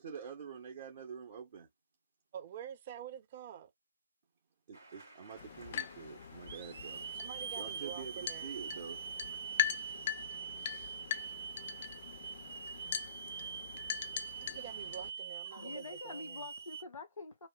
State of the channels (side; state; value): both; inverted; correlation -0.49